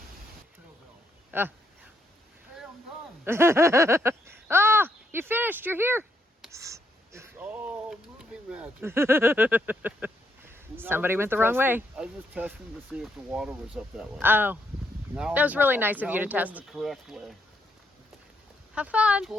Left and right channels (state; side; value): normal; both; correlation 0.76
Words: Hey, I'm done. Ah, you finished. You're here. It's all movie magic. Somebody went the wrong way. I was just testing to see if the water was up that way. Oh, Now that was really nice of you to going test. the correct way. Have fun.